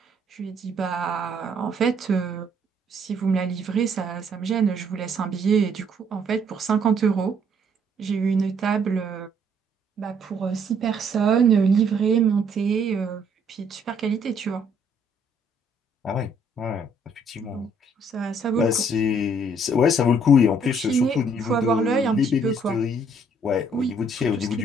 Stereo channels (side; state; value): both; normal; correlation 0.65